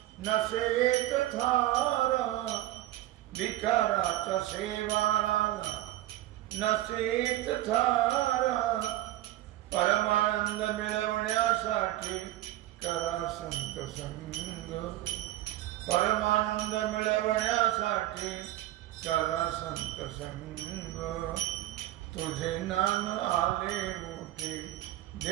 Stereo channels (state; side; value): quieter; left; 15.2 dB